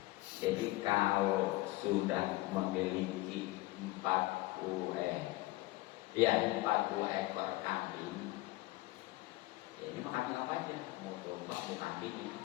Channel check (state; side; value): quieter; right; 19.7 dB